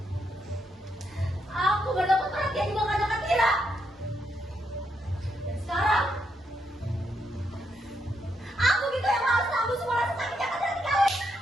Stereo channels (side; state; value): both; normal; correlation 0.79